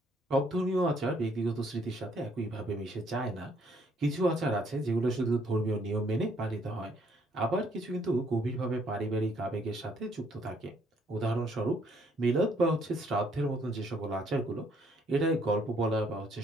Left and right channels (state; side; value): normal; both; correlation 0.67